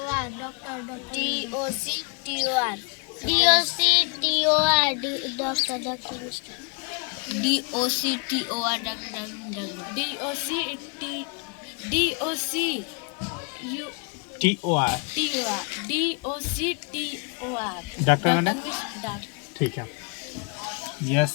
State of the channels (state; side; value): quieter; right; 35.0 dB